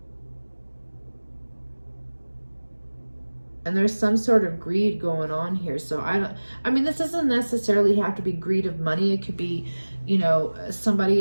And there's some sort of greed going on here. So I mean, this doesn't necessarily have to be greed of money. It could be, you know,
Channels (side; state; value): both; inverted; correlation -1.00